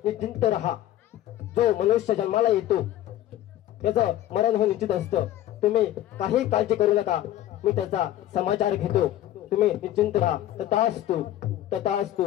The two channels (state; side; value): quieter; right; 13.2 dB